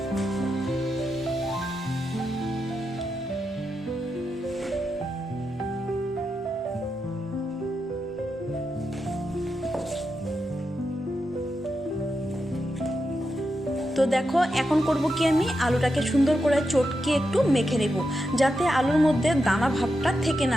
তো দেখো এখন করব কি, আমি আলুটাকে সুন্দর করে চটকে একটু মেখে নেব যাতে আলুর মধ্যে দানা ভাবটা থেকে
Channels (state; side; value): normal; both; correlation 0.87